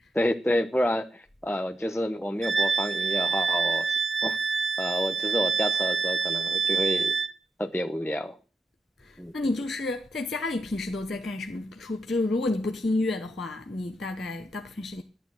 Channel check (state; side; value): normal; both; correlation 0.86